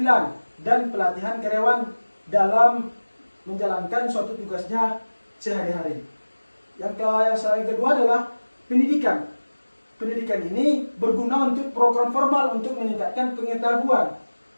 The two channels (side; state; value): both; inverted; correlation -1.00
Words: dan pelatihan karyawan dalam menjalankan suatu tugasnya sehari-hari. Yang kedua adalah pendidikan. Pendidikan ini berguna untuk program formal untuk meningkatkan pengetahuan